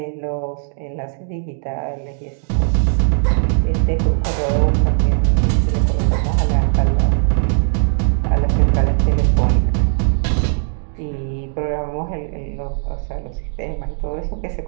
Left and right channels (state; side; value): silent; left; 63 dB below the other